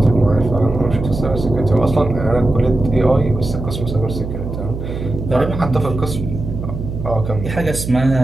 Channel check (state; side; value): noise; right; hum, 7 dB below the sound